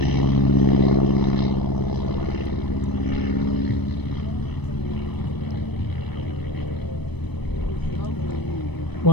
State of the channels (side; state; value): right; late; 0.99 ms